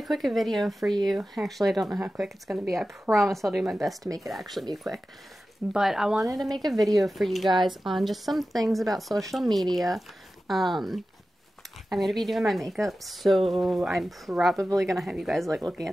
quick video for you. Actually, I don't know how quick it's going to be. I promise I'll do my best to make it actually be quick. But I wanted to make a video for you guys on just some things about social media. I'm going to be doing my makeup, so I'm probably going to have you guys like looking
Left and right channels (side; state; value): both; normal; correlation 0.94